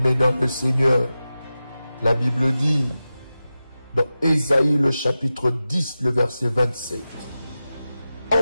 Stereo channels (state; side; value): inverted; both; correlation -0.94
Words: dans le Seigneur, la Bible dit dans Ésaïe le chapitre 10, le verset 27, «